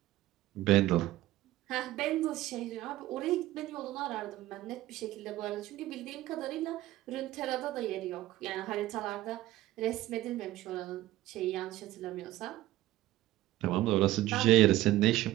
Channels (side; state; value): left; quieter; 15.6 dB